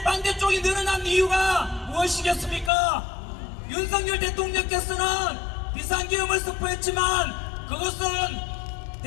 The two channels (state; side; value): drops out; right; at 2.7 s